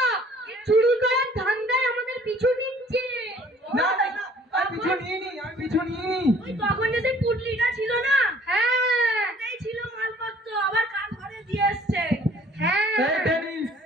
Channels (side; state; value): both; normal; correlation 0.55